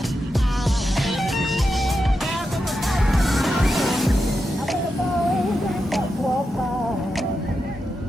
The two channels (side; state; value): both; normal; correlation 0.88